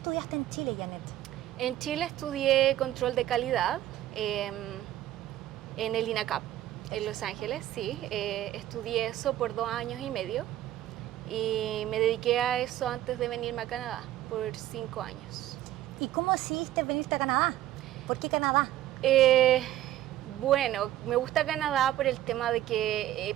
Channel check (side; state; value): left; quieter; 13.6 dB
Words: en Chile, Janet? En Chile estudié control de calidad en el INACAP. En Los Ángeles, sí. Estudié eso por 2 años y medio y me dediqué a eso antes de venirme a Canadá por 5 años. ¿Y cómo decidiste venirte a Canadá? ¿Por qué Canadá? Me gusta Canadá por el tema de que